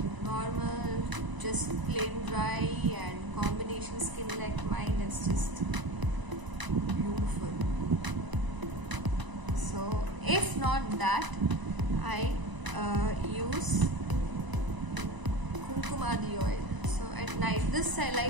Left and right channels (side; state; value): left; late; 1.0 ms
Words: normal, just plain dry, and combination skin like mine is just beautiful. So if not that, I use Kumkumadi oil. So at night, this I